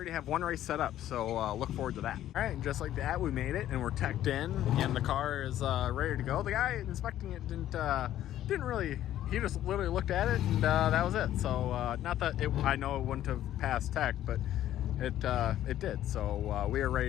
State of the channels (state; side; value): quieter; right; 12.4 dB